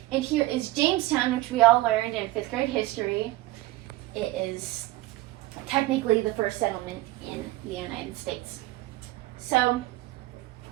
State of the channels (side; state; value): left; quieter; 17.8 dB